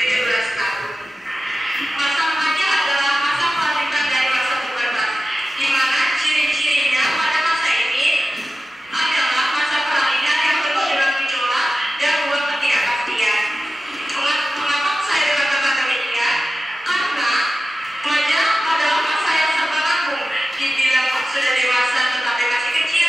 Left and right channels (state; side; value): normal; both; correlation 0.94